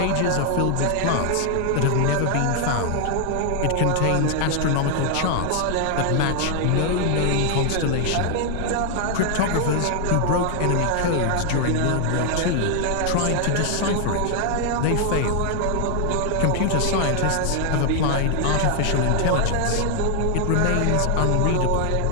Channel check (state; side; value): different; both; correlation 0.00